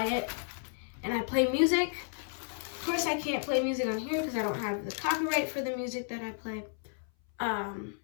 it, and I play music. Of course, I can't play music on here because I don't have the copyright for the music that I play.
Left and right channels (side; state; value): right; silent; 56 dB below the other